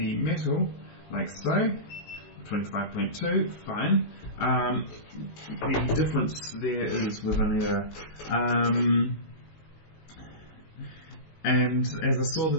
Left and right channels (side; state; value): right; late; 19 ms